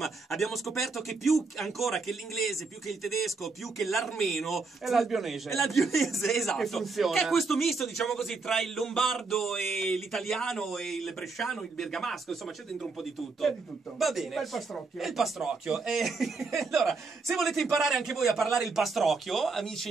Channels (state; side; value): quieter; left; 4.1 dB